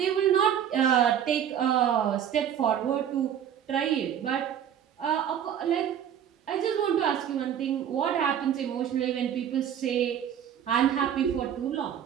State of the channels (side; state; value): left; quieter; 9.3 dB